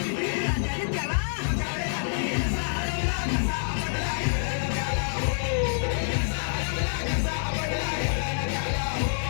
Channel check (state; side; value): silent; right; digital silence